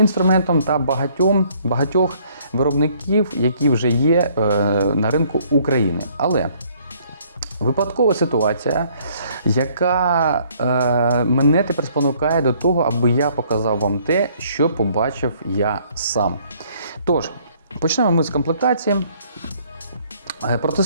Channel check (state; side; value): inverted; both; correlation -0.62